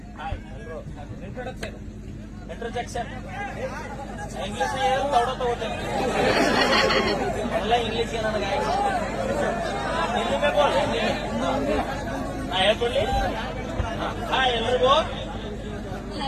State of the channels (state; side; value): identical; both; correlation 1.00